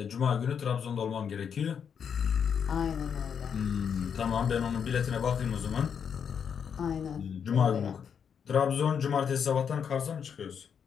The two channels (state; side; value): quieter; right; 7.3 dB